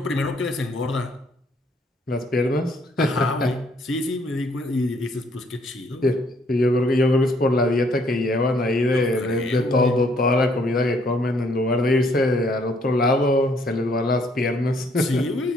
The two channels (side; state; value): both; normal; correlation 0.66